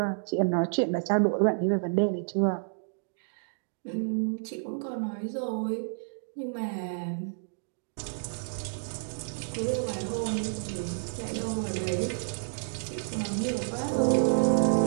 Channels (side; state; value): left; silent; digital silence